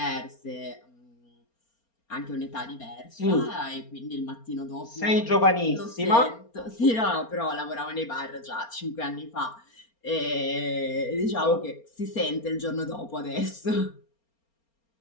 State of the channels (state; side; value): late; right; 4.3 ms